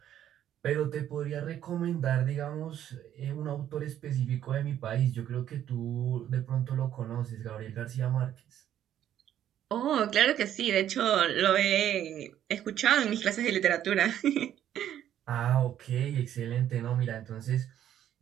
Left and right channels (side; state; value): left; quieter; 10.9 dB